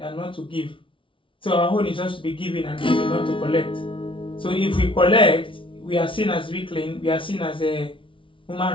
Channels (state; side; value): late; right; 0.25 ms